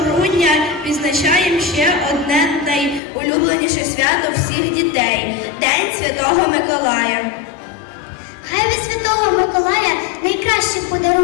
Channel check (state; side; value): drops out; right; at 3.0 s